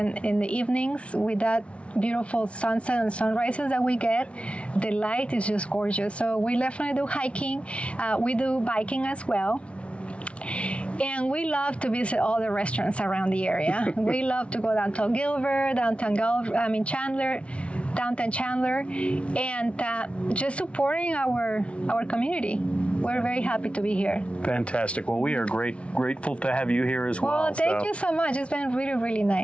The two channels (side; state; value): right; late; 0.061 ms